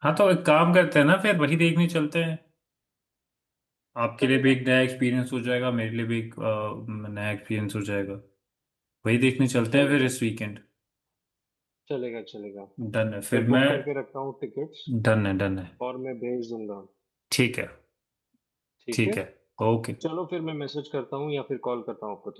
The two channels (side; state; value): both; identical; correlation 1.00